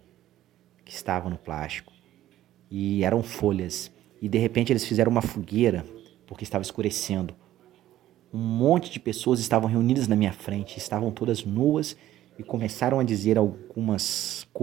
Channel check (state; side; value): quieter; left; 13.5 dB